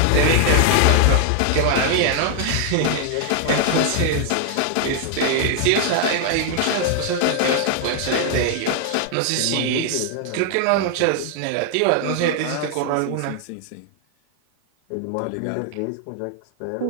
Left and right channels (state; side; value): different; both; correlation 0.00